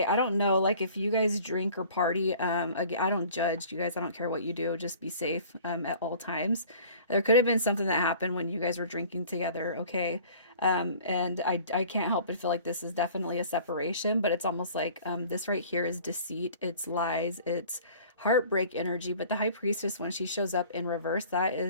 I don't know, like if you guys drink or party, again, I don't judge you guys. I don't care what you do. Just be safe at all times. There could have been something that happened when you guys were drinking together. Okay. And I can't help but feel like this is definitely a separation, but it's almost like this right here is deceit. It's lies. It's heartbreak energy. But the High Priestess, when she shows up in reverse, that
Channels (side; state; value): both; inverted; correlation -0.48